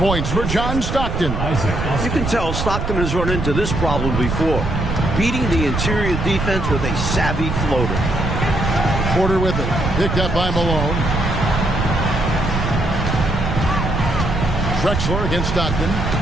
for John Stockton. You can tell Stockton has run into this problem before. Beating the interior defense with a savvy floater. Porter with it. Picked up by Malone. Drexler against Stockton.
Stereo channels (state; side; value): noise; right; rumble, 3 dB below the sound